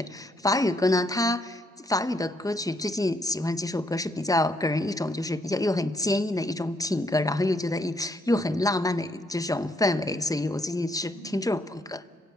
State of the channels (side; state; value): both; normal; correlation 0.73